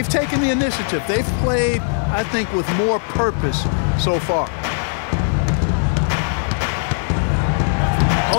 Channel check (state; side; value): silent; right; 66 dB below the other